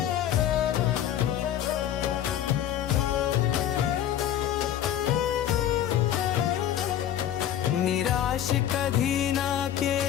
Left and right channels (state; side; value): quieter; right; 10.9 dB